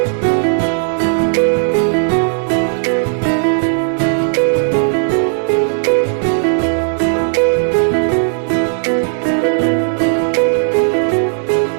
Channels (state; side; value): silent; left; digital silence